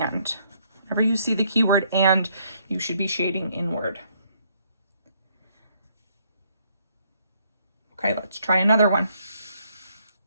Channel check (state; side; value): inverted; both; correlation -0.69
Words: Whenever you see the keyword and, you should be shading inward. Okay, let's try another one.